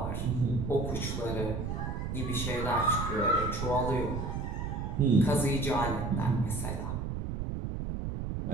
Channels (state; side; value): noise; right; rumble, 3 dB below the sound